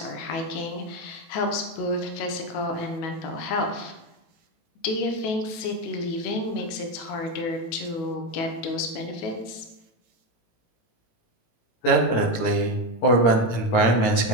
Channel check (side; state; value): right; late; 19 ms